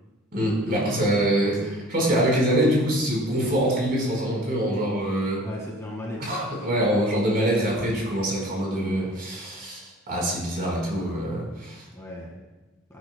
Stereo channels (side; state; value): both; normal; correlation 0.47